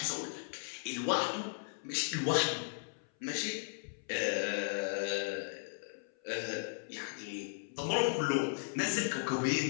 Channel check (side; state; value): right; silent; 54 dB below the other